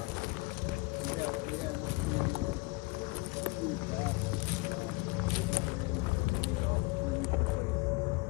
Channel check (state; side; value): quieter; right; 24.5 dB